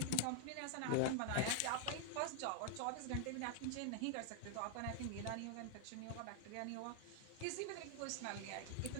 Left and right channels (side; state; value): both; different; correlation 0.00